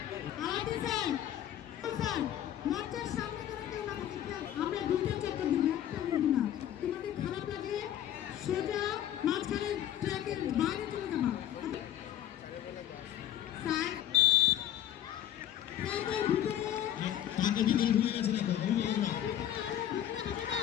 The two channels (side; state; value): right; quieter; 11.4 dB